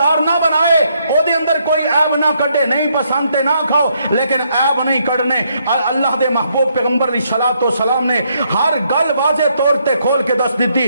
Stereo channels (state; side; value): inverted; both; correlation -0.74